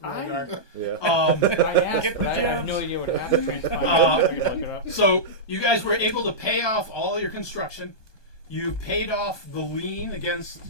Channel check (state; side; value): late; right; 1.2 ms